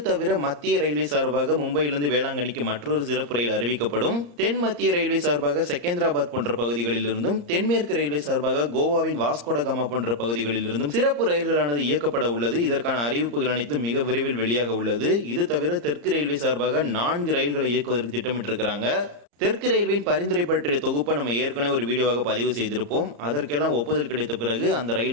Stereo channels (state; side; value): late; left; 34 ms